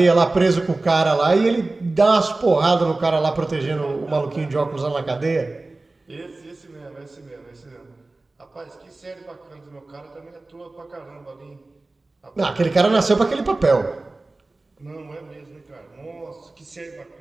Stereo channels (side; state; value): left; quieter; 3.1 dB